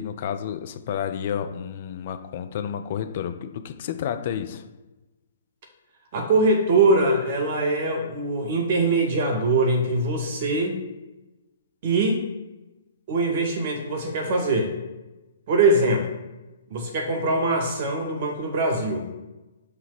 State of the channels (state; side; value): inverted; both; correlation -0.37